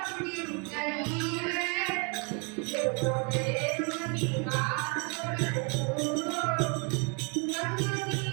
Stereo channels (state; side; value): quieter; left; 33.6 dB